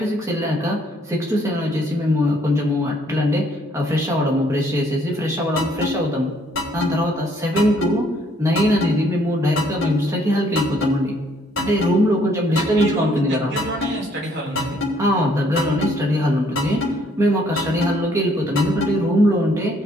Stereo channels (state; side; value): normal; both; correlation 0.65